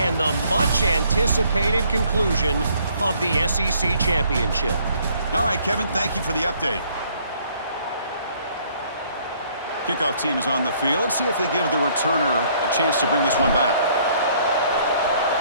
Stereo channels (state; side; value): inverted; both; correlation -0.63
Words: the much-anticipated conclusion of the SEC championship. All right, Kevin, thank you for the update. Kickoff team is on the field. Let's see if they give the returner a chance to bring this one back.